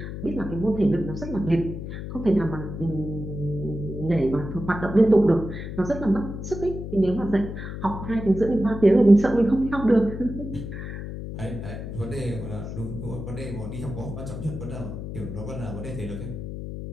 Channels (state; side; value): noise; left; hum, 8 dB below the sound